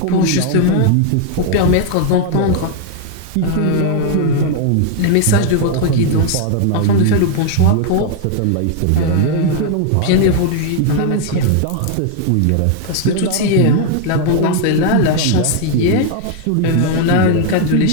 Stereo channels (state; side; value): different; both; correlation 0.00